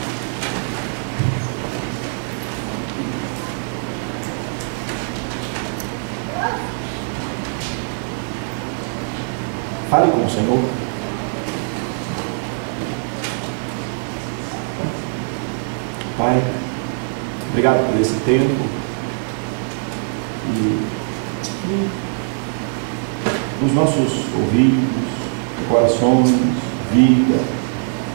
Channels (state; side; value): silent; left; 65 dB below the other